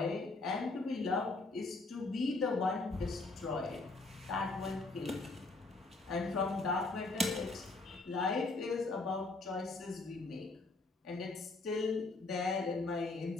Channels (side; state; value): right; quieter; 3.4 dB